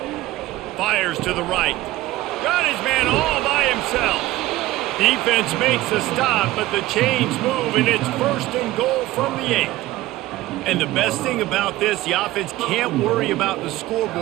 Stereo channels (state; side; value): quieter; left; 16.9 dB